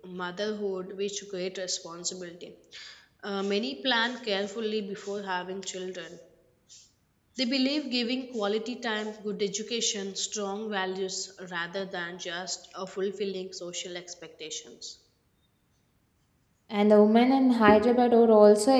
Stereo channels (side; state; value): both; identical; correlation 1.00